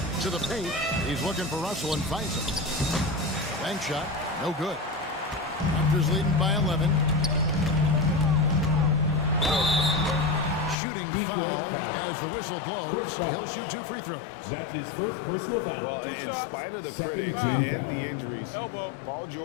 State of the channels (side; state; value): right; drops out; at 10.8 s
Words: To the paint. He's looking for Russell and finds him. Bank shot. No good. Raptors leading by 11. Shooting foul as the whistle blows. He'll shoot 2 free throws. That's his first personal foul. Well, in spite of the critics and the injuries, Paul